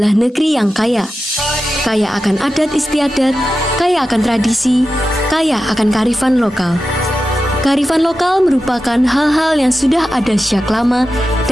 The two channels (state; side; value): normal; both; correlation 0.92